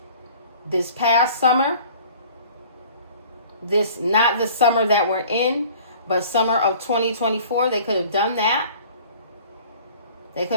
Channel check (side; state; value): both; inverted; correlation -0.49